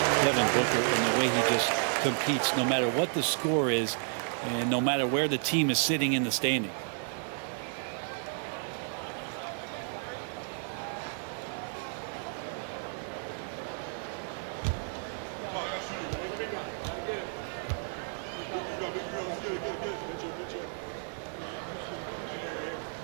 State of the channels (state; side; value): silent; left; 56 dB below the other